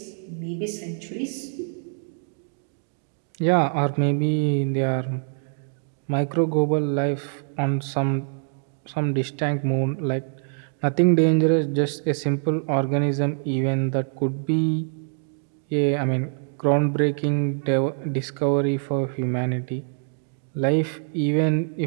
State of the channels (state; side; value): silent; left; digital silence